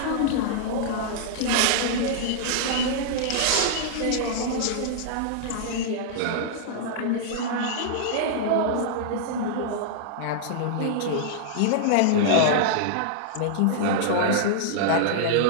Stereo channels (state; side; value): different; both; correlation -0.02